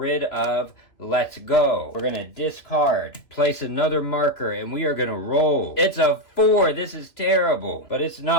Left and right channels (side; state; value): right; late; 3.1 ms